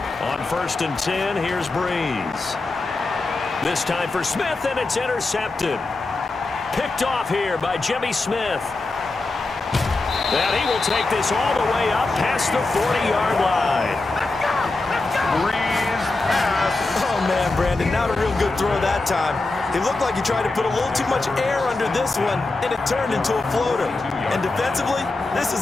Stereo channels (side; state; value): right; quieter; 3.3 dB